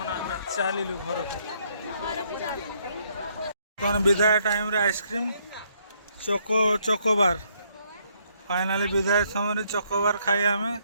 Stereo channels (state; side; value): inverted; both; correlation -0.70